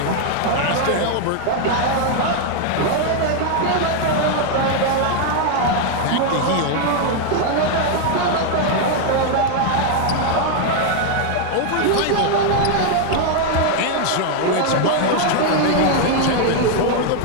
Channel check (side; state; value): both; different; correlation 0.00